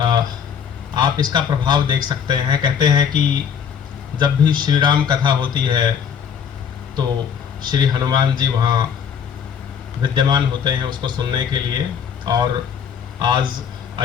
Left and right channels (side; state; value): right; quieter; 7.6 dB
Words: आप इसका प्रभाव देख सकते हैं। कहते हैं कि जब भी श्री राम कथा होती है तो श्री हनुमान जी वहाँ विद्यमान होते हैं उसको सुनने के लिए। और आज